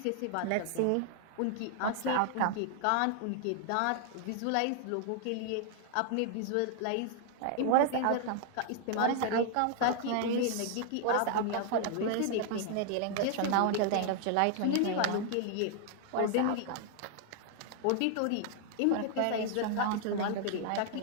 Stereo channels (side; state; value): both; different; correlation 0.00